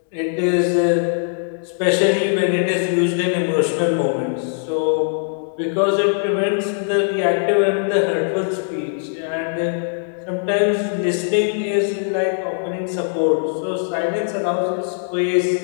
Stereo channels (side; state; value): right; silent; digital silence